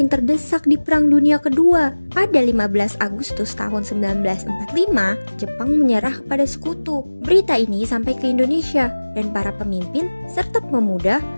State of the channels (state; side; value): inverted; both; correlation -1.00